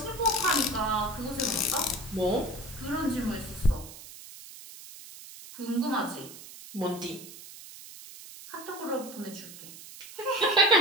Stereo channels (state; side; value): noise; right; hiss, 15 dB below the sound